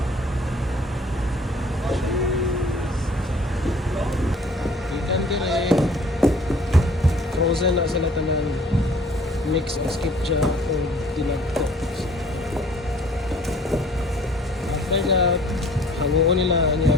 Ikan dire. Frozen na sila tanan. Mix o skipja o dinagto. After that, hanguon nila niya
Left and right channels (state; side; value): normal; both; correlation 0.54